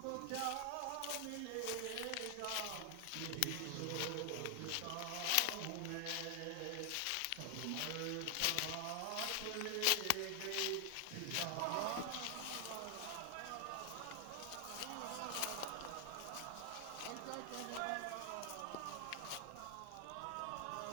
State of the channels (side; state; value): both; different; correlation 0.00